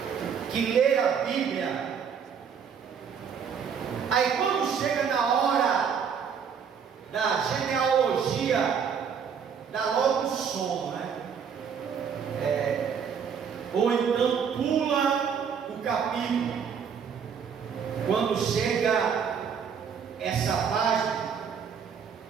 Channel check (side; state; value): left; quieter; 7.0 dB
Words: que lê a Bíblia, aí quando chega na hora da genealogia, dá logo sono, né? Ou então pula o capítulo, quando chega essa página,